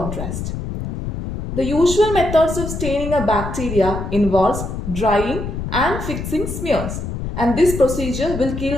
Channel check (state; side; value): noise; left; rumble, 6 dB below the sound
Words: The usual methods of staining a bacteria involves drying and fixing smears, and this procedure will